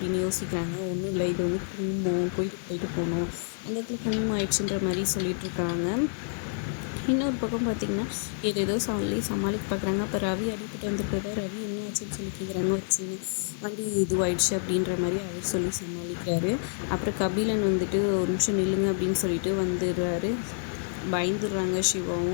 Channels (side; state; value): right; silent; 59 dB below the other